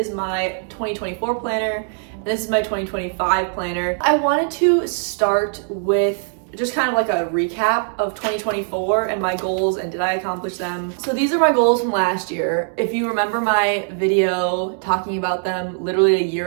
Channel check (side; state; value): left; silent; 65 dB below the other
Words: my 2024 planner, and this is my 2025 planner. I wanted to start with just kind of like a recap of 2024 and my goals and did I accomplish them. So these are my goals from last year. If you remember my video talking about them literally a